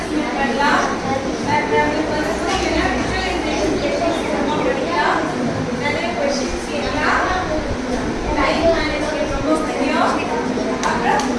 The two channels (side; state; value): both; identical; correlation 1.00